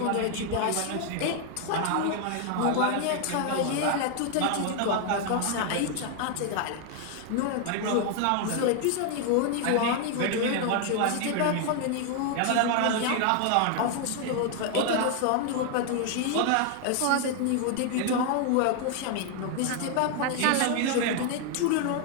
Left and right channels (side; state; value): both; different; correlation 0.00